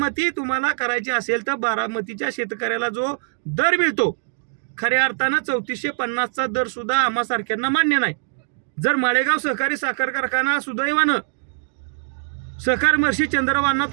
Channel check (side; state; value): left; silent; digital silence